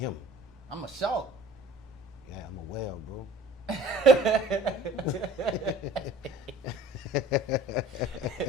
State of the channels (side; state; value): both; normal; correlation 0.47